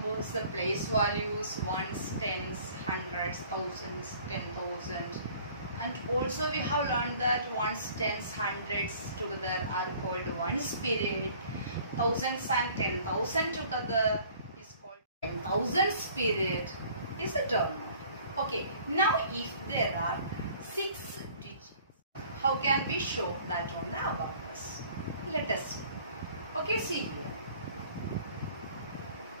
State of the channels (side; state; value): both; inverted; correlation -0.53